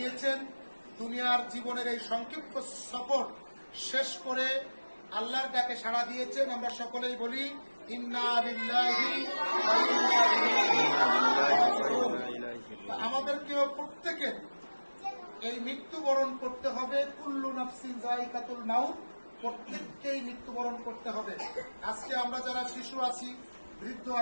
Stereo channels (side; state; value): both; inverted; correlation -1.00